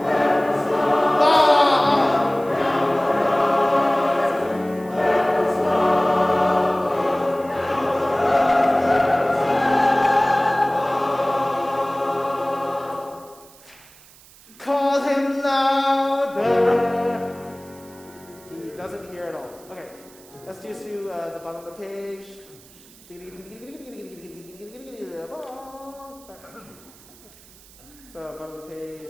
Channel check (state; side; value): noise; right; hiss, 24 dB below the sound